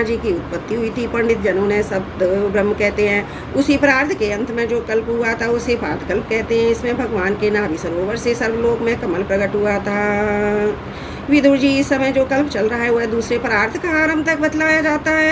जी की उत्पत्ति हुई थी। पंडित जनों ने सप्त ब्रह्म कहते हैं। उसी परार्थ के अंत में जो कल्प हुआ था उसे पाद कल्प कहते हैं। इसमें भगवान के नाभि सरोवर से सर्वलोक में कमल प्रकट हुआ था। विदुर जी, इस समय जो कल्प चल रहा है वह दूसरे परार्थ का आरंभ तक बतलाया जाता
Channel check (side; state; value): both; identical; correlation 1.00